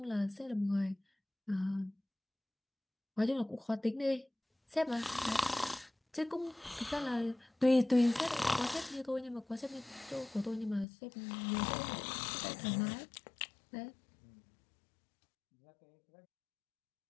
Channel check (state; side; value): drops out; right; at 10.9 s